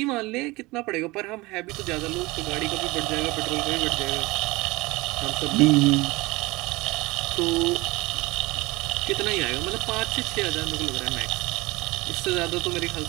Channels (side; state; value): left; quieter; 22.3 dB